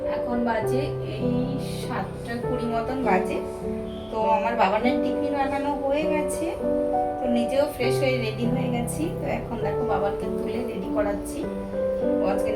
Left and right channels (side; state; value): both; identical; correlation 1.00